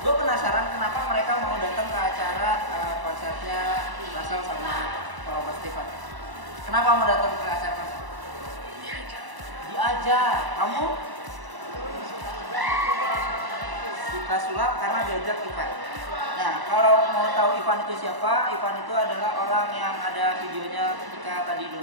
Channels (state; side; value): late; left; 1.0 ms